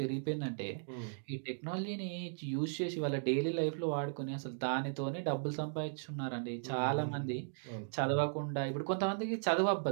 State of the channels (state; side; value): silent; left; digital silence